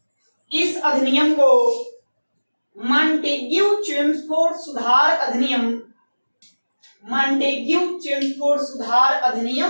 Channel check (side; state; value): both; inverted; correlation -1.00